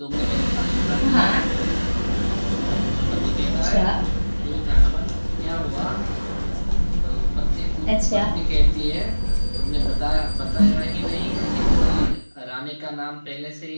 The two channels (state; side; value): inverted; both; correlation -1.00